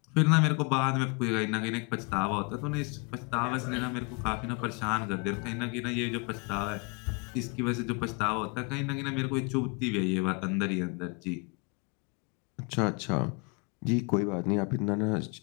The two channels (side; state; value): right; quieter; 32.3 dB